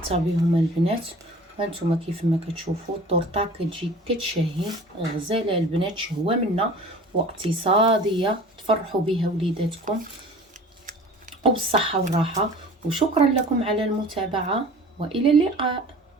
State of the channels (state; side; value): normal; both; correlation 0.43